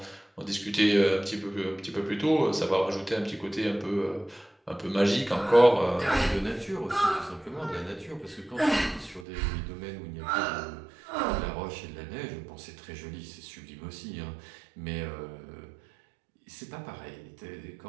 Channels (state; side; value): drops out; left; at 9.2 s